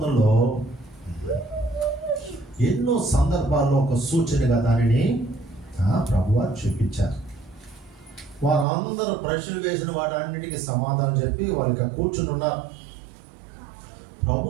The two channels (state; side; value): drops out; left; at 8.7 s